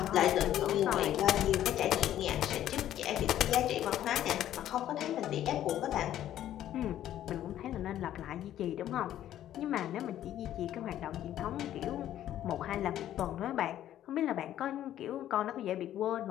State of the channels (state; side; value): quieter; right; 12.0 dB